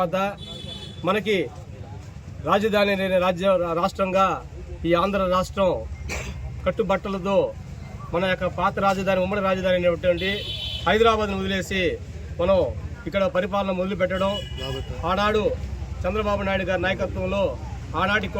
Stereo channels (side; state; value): both; identical; correlation 1.00